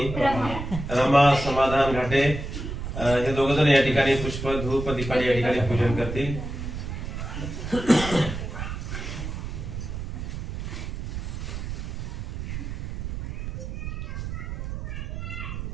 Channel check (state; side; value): noise; right; rumble, 6 dB below the sound